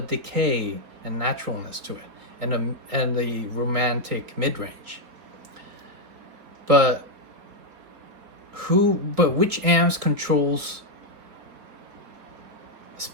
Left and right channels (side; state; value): left; late; 3.7 ms